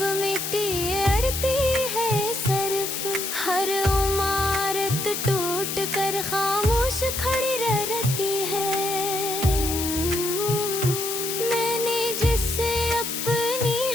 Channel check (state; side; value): noise; left; hiss, 3 dB below the sound